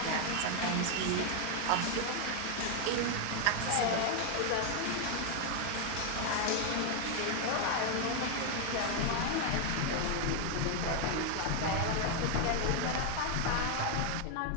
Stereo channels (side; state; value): both; different; correlation 0.00